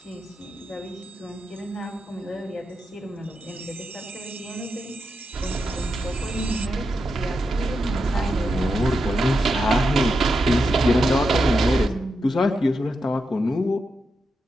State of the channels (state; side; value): normal; both; correlation 0.86